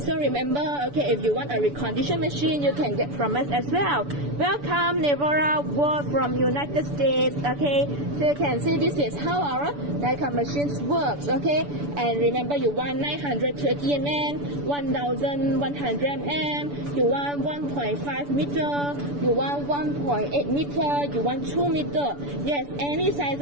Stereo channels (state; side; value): late; left; 6.9 ms